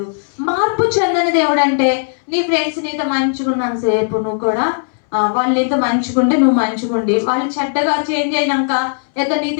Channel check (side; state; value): right; silent; 66 dB below the other